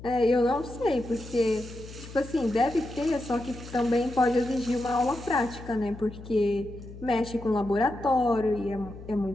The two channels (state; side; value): noise; left; hum, 15 dB below the sound